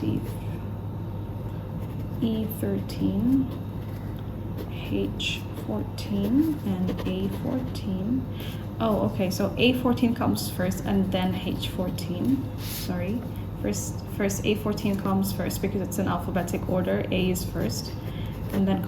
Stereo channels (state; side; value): identical; both; correlation 1.00